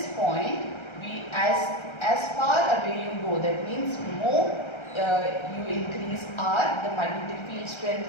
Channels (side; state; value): right; late; 1.3 ms